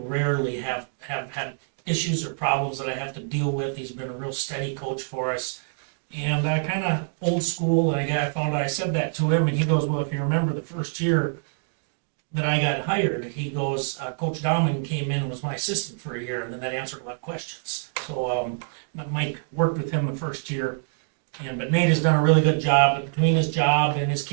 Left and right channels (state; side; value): silent; left; digital silence